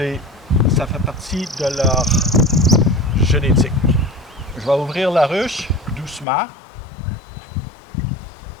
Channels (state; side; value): drops out; right; at 6.2 s